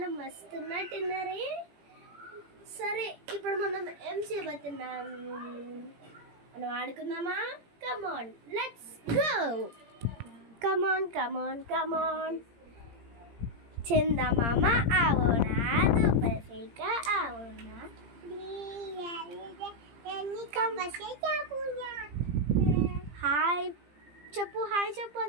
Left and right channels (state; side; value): late; left; 17 ms